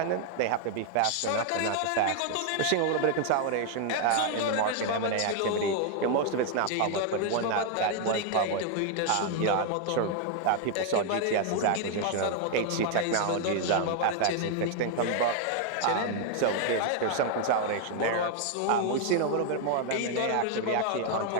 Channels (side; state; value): both; different; correlation 0.00